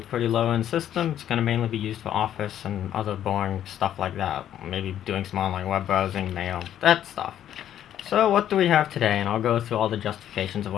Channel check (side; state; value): right; quieter; 10.9 dB